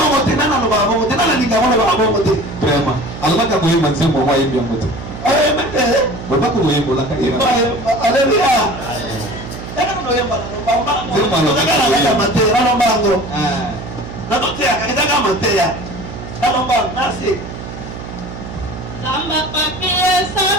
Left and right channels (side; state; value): right; noise; hum, 11 dB below the sound